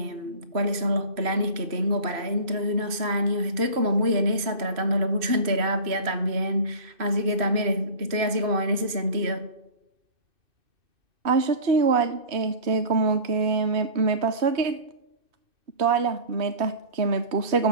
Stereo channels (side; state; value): left; late; 2.6 ms